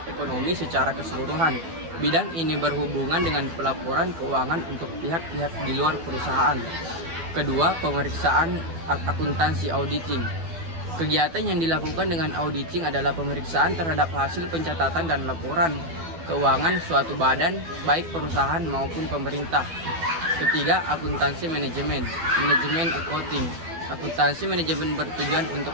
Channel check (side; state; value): left; late; 12 ms